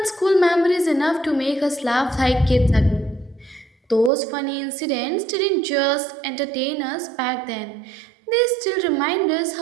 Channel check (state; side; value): drops out; left; at 4.1 s